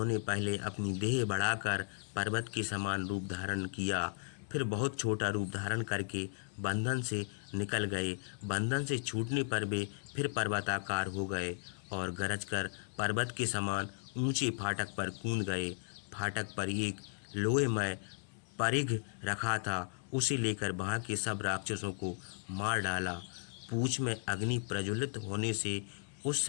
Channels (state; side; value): silent; right; digital silence